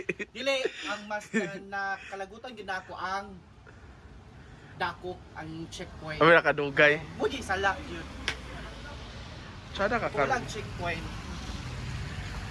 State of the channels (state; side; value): identical; both; correlation 1.00